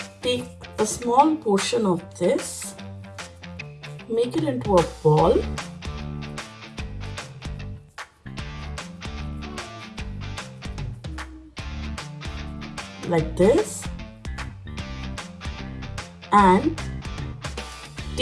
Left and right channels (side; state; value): both; identical; correlation 1.00